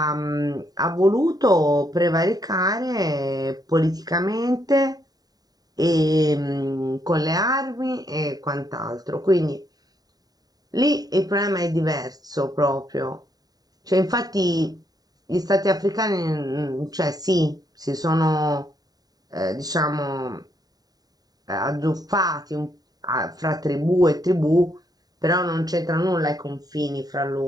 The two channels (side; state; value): left; late; 0.18 ms